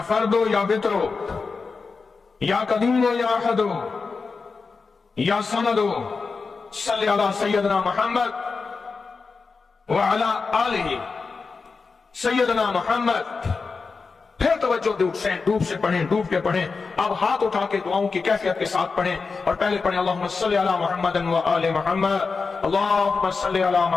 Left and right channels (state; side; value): quieter; right; 4.6 dB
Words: فرد ہو یا وطر ہو، یا قدیم ہو یا احد ہو، یا صمد ہو، صلی علی سیدنا محمد وعلی آل سیدنا محمد۔ پھر توجہ ڈوب سے پڑھیں، ڈوب کے پڑھیں۔ اب ہاتھ اٹھا کے دعاؤں کی کیفیت کے ساتھ پڑھیں، اور پہلے پڑھیں اللہم صلی علی محمد وآل محمد، اللہم صلی علی